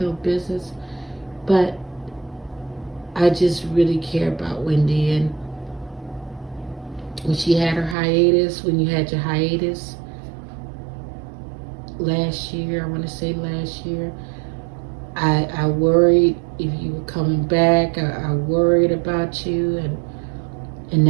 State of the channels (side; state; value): left; drops out; at 8.0 s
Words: no business. But I just really care about Wendy. And when she had her hiatus, when you had your hiatus last year, I want to say last year, I worried if you were coming back. I worried about you, and